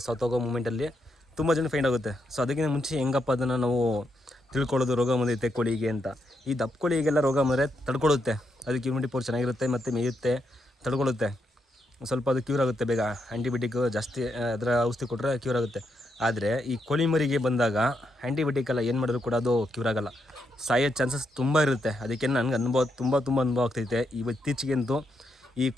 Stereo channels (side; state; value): both; normal; correlation 0.81